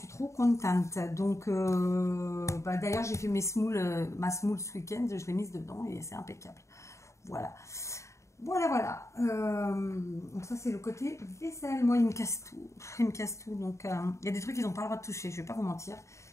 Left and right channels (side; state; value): right; late; 0.14 ms